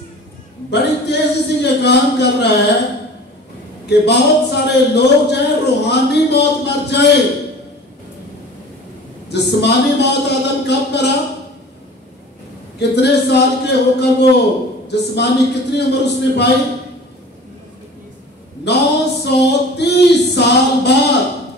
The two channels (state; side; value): normal; both; correlation 0.42